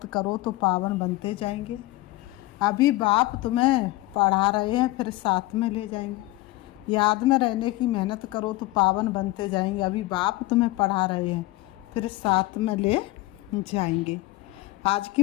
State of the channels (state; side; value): quieter; right; 19.2 dB